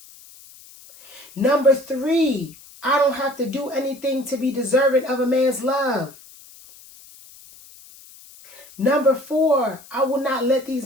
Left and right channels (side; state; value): left; noise; hiss, 22 dB below the sound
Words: Number 3, I don't have to do anything to be deserving of a man's love. Number 4, I will not let